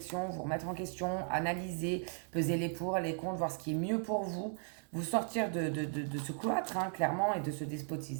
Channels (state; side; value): silent; left; 53 dB below the other